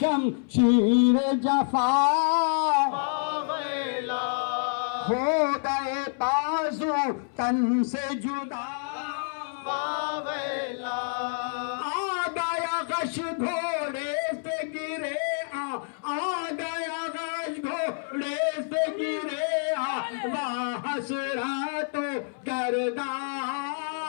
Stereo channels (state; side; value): silent; right; 60 dB below the other